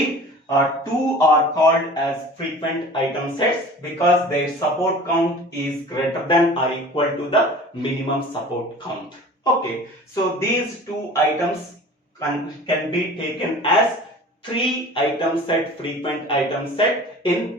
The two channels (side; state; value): both; normal; correlation 0.42